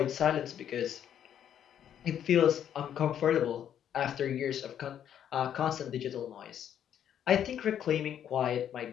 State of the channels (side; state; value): right; quieter; 9.7 dB